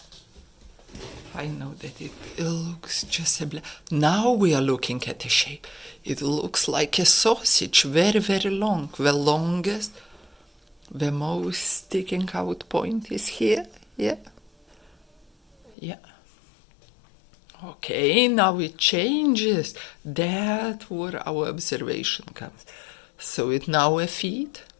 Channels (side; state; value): right; drops out; at 15.8 s